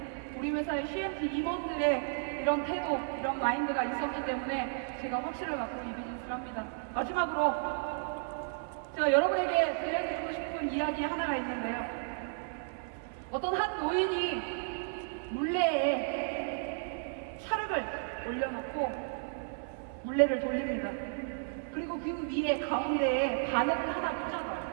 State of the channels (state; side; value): silent; left; 56 dB below the other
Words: 우리 회사의 CMT 임원들의 이런 태도, 이런 마인드가 있었기 때문에 제가 확신을 갖고 이 비즈니스를 합니다. 마지막으로 제가 여러분에게 들려드리고 싶은 이야기 하나가 있는데요. 어떤 한 노인이 물레에 찰흙을 올려놓고 물레를 돌립니다. 그리고 그 위에 가운데에 바늘을 하나